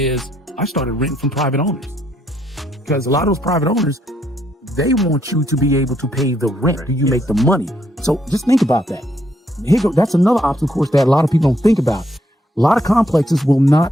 I started renting from private owners, because a lot of those private owners, they want you to be able to pay the rent. Do you make the money? So just think about that. That's another obstacle course that a lot of people don't think about. A lot of complexes will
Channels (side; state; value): both; normal; correlation 0.73